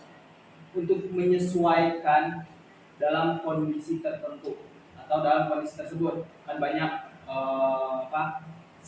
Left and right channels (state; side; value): identical; both; correlation 1.00